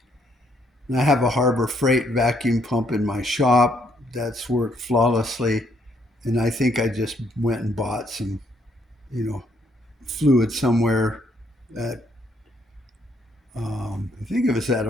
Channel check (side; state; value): both; normal; correlation 0.70